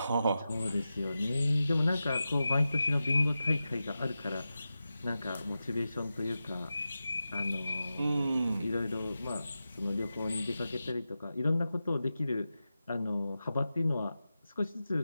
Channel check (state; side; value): inverted; both; correlation -0.92